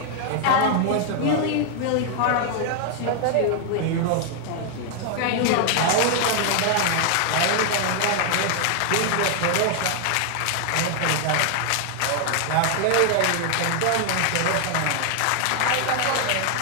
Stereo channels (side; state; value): both; different; correlation 0.00